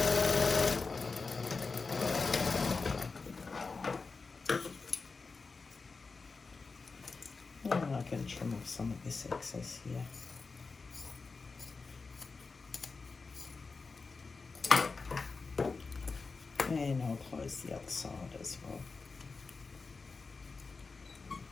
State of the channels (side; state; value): right; quieter; 4.3 dB